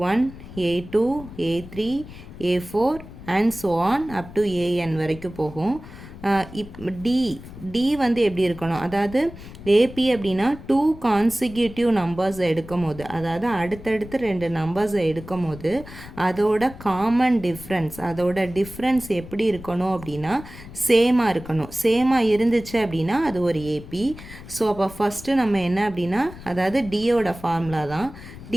A2, A3, A4 and so on up to AN வரைக்கும் போகும். டி வந்து எப்படி இருக்கணும், அதாவது ஏபி அப்படின்னா 2 கான்சிக்யூட்டிவ் நம்பர்ஸை எடுக்கும் போது, அதாவது அடுத்தடுத்து 2 நம்பர்ஸை எடுக்கும் போது அதோட காமன் டிஃப்ரென்ஸ், அதோட டிஃப்ரென்ஸ் எப்படி இருக்கணும் அப்படின்னா சேமாக இருக்கணும். சேமாக இருந்துச்சு அப்படின்னா அது ஒரு ஏபி. ஸோ அப்போ ஃபஸ்ட்டு நம்ம என்ன அப்படின்னா, அதாவது டியோட ஃபார்முலா தான்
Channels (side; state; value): left; noise; rumble, 15 dB below the sound